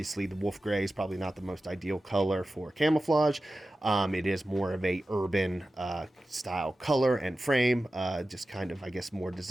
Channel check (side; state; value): both; normal; correlation 0.94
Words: the wolf gray is probably not the most ideal color for camouflage. It is more of a urban style color and frame, just kind of, I guess, more